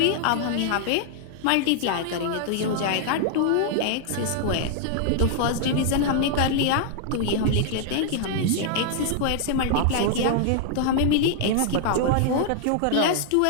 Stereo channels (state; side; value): different; both; correlation -0.01